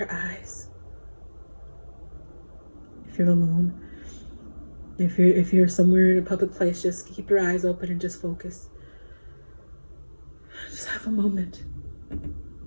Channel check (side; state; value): both; inverted; correlation -1.00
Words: eyes. If you're alone, if you're somewhere in a public place, just keep your eyes open and just focus. Just have a moment.